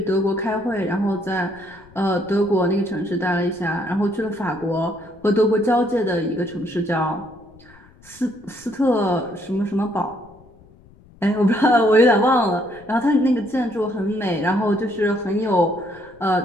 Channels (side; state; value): left; noise; rumble, 26 dB below the sound